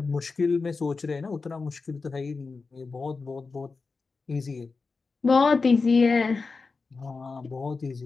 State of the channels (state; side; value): quieter; right; 4.3 dB